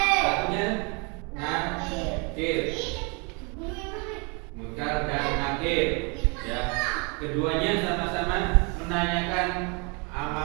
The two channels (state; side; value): quieter; left; 32.6 dB